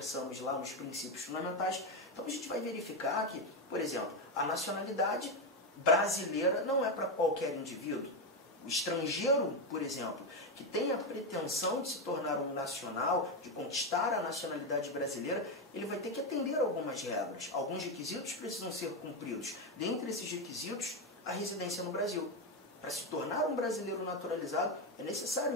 lá nos princípios fundamentais. Então a gente vai verificar que, por exemplo, a nacionalidade brasileira não é para qualquer indivíduo. O estrangeiro, por exemplo, que tem a pretensão de se tornar um nacional, de conquistar a nacionalidade brasileira, ele vai ter que atender a algumas regras. Alguns requisitos precisam ser cumpridos. Dentre esses requisitos, a residência no Brasil. Para se tornar um brasileiro naturalizado, é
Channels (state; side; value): normal; both; correlation 0.09